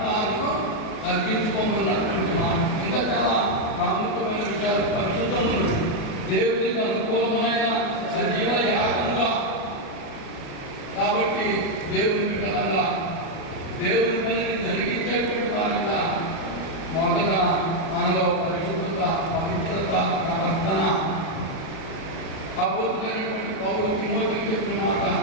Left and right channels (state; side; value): late; right; 37 ms